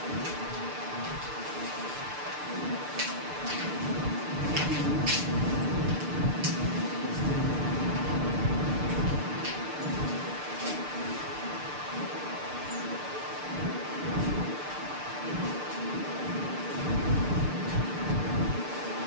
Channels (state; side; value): late; left; 6.7 ms